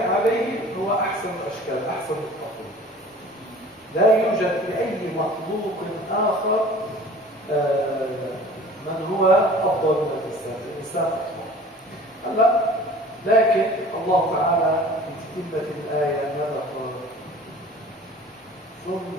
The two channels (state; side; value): normal; both; correlation 0.45